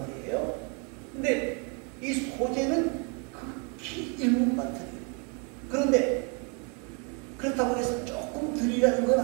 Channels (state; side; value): quieter; left; 35.2 dB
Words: 근데 이 소재는 극히 일부만 드려요. 그런데 그렇다고 해서 조금 드리라는 건